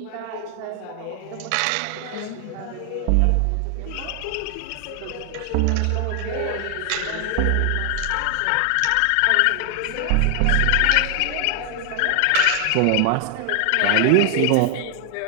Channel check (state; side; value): different; both; correlation 0.00